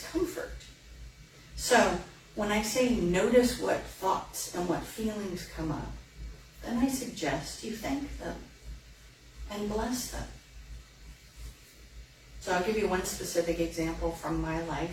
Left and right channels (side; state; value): both; identical; correlation 1.00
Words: So when I say notice what thoughts and what feelings come up, then I suggest you thank them and bless them. So I'll give you one specific example from my